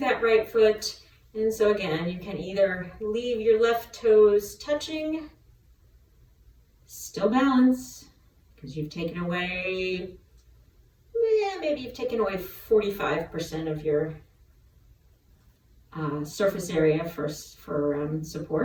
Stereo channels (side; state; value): both; identical; correlation 1.00